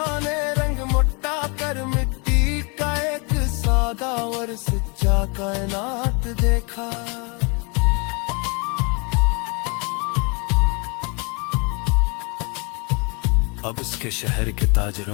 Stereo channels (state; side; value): quieter; right; 32.2 dB